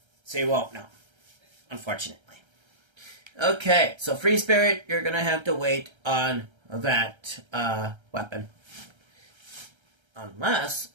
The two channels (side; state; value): left; late; 1.3 ms